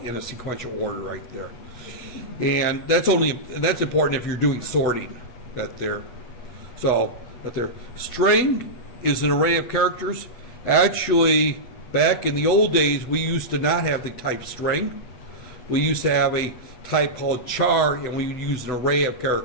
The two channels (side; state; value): right; late; 8.1 ms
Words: a sequential order right there. And that's important if you're doing sorting that there. So that there. String is an array of characters. Actually, back in the old days, we used to not have the type string. We used to have a type called char, and we would use an array of